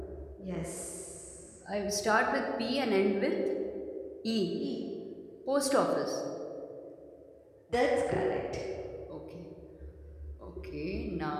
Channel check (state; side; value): identical; both; correlation 1.00